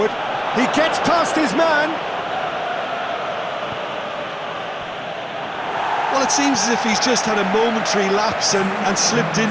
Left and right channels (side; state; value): both; identical; correlation 1.00